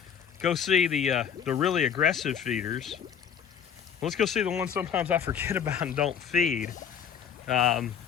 go see the really aggressive feeders, let's go see the ones sometimes I forget about and don't feed.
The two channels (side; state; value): right; quieter; 7.9 dB